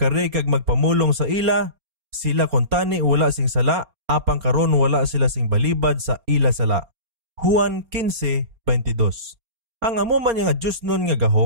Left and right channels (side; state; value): left; late; 4.3 ms